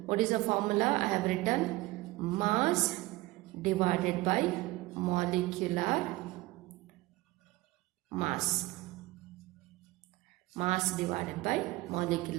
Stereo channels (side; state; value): left; quieter; 19.7 dB